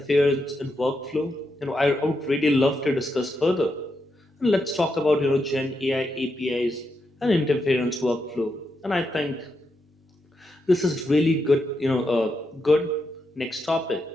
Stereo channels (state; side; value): normal; both; correlation 0.83